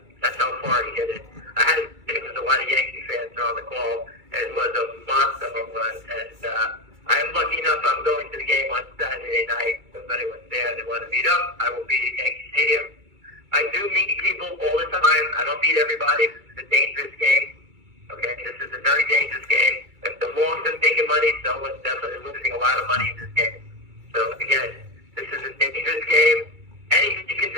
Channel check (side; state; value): left; late; 2.3 ms